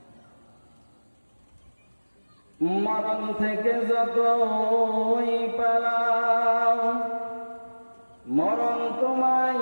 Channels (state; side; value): inverted; both; correlation -1.00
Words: মরণ থেকে যতই পালাও মরণ তোমায়